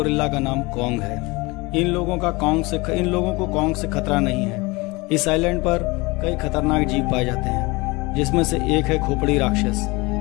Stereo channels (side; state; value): right; quieter; 24.3 dB